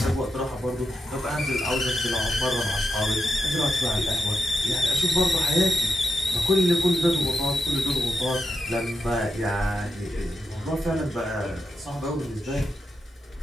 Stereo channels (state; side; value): normal; both; correlation 0.86